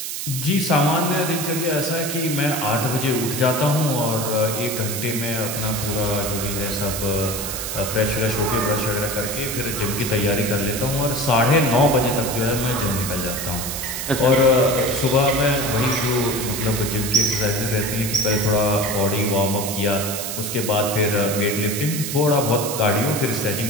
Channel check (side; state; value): right; noise; hiss, 5 dB below the sound